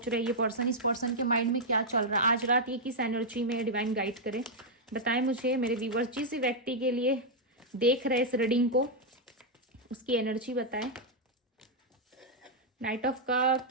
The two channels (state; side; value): normal; both; correlation -0.04